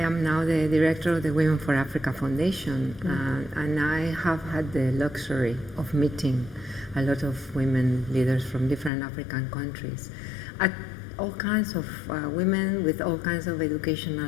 now the director of the Women for Africa Foundation, and I have had the luxury of meeting a lot of women leaders from different African countries, at all kinds of women with all kinds of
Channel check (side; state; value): right; drops out; at 8.9 s